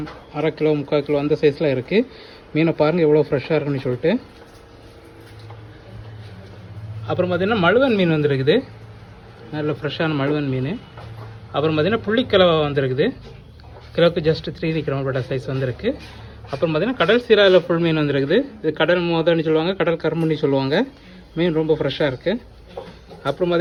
அரை கிலோ, 3/4 கிலோ அந்த சைஸில் இருக்குது. மீனை பாருங்கள் எவ்வளோ ஃப்ரெஷ்ஷாக இருக்குன்னு சொல்லிட்டு. அப்புறம் பார்த்திங்கன்னா மழுவன் மீன் வந்திருக்குது, நல்ல ஃப்ரெஷ்ஷான மழுவன் மீன். அப்புறம் பார்த்திங்கன்னா புள்ளிக்கிழவை வந்திருக்குது, கிலோவுக்கு ஜஸ்ட் 3 கிராம் சைஸ் வந்திருக்கு. அப்புறம் பார்த்திங்கன்னா கடல் சீராவில் ஃபுல் மீன் வந்துருக்குது. இது கடல் மோதன்னு சொல்லுவாங்க, கடல் கரும்புன்னு சொல்லுவாங்க. மீன் ரொம்ப ஃப்ரெஷ்ஷாக இருக்குது. அப்புறம்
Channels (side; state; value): both; identical; correlation 1.00